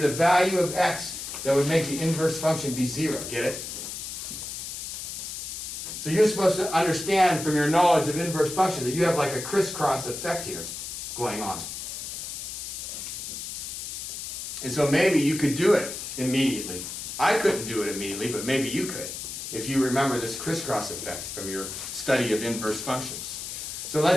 value of x that would make the inverse function be 0. Get it? So you're supposed to understand from your knowledge of inverse function that you have like a crisscross effect here going on. And so maybe you could do it immediately. I couldn't do it immediately, but maybe you could, if you remember this crisscross effect from your study of inverse functions. So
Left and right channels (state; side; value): noise; left; hiss, 7 dB below the sound